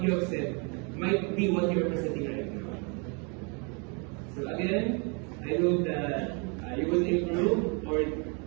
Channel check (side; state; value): left; quieter; 34.7 dB